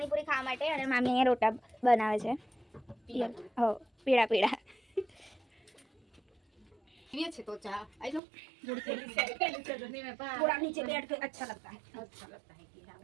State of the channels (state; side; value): drops out; left; at 8.2 s